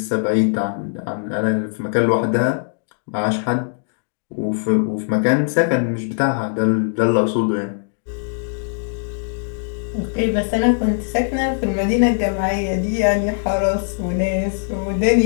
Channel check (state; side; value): silent; right; digital silence